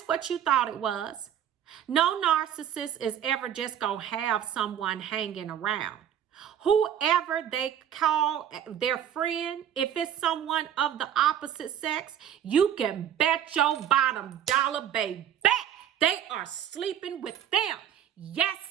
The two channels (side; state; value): left; quieter; 9.8 dB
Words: what you thought it was. No narcissist is ever just going to have someone hanging around. Whoever they call their friend, if it's someone of the opposite sex, you can bet your bottom dollar, baby, they are sleeping with them.